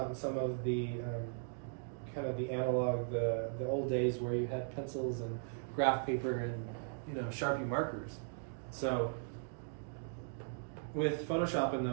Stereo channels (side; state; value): left; silent; digital silence